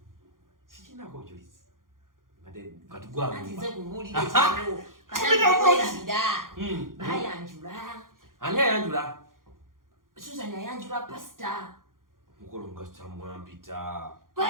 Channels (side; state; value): left; late; 0.90 ms